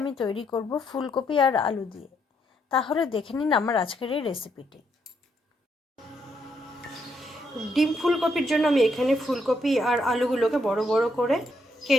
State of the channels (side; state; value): both; normal; correlation 0.75